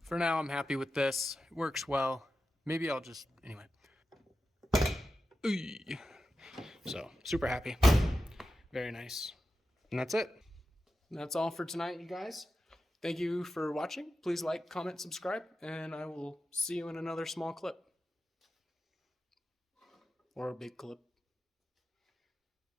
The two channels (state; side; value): normal; both; correlation 0.91